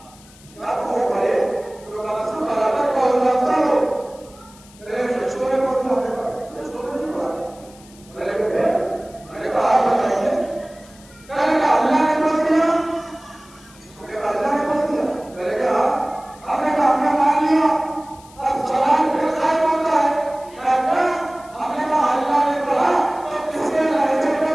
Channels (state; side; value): noise; left; hiss, 25 dB below the sound